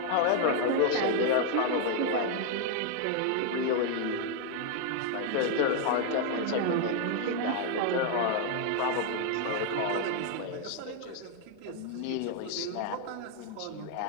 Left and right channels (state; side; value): different; both; correlation 0.01